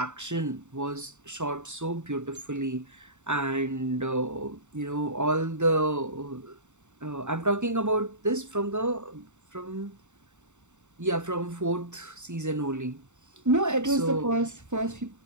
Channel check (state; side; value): late; left; 0.84 ms